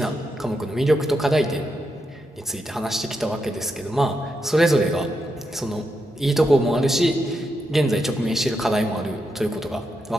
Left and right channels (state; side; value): normal; both; correlation 0.84